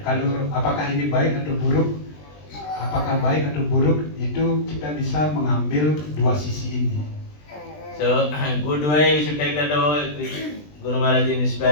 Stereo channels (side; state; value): right; late; 20 ms